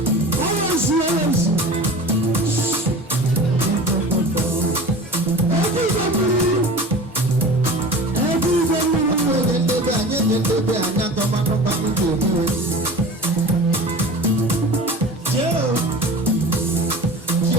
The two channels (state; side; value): normal; both; correlation 0.37